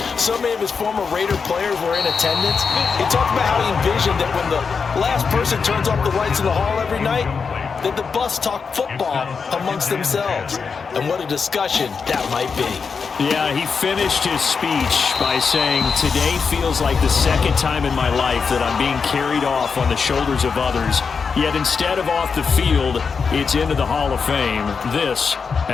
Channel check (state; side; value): quieter; right; 5.5 dB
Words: So many of his former Raider players were in attendance. He talked about how he envisioned that when the last person turns off the lights in the hall every night, that the bus talk football amongst themselves. And what a discussion that might be. Yeah, he finished his speech by saying, today feels like the second time in my life that I'm being carried off on the shoulders of others. Yet instead of off the field, it's into the Hall of Fame. This